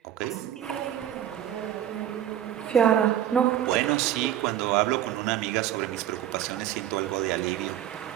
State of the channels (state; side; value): quieter; left; 11.1 dB